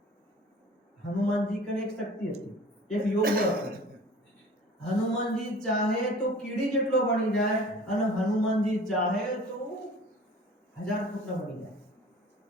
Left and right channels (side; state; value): both; normal; correlation 0.45